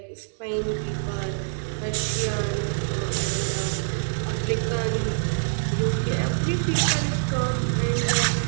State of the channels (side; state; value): left; silent; digital silence